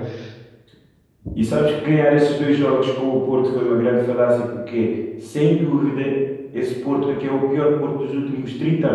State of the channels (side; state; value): both; identical; correlation 1.00